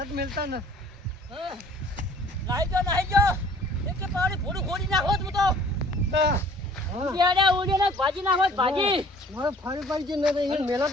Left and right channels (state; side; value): normal; both; correlation 0.53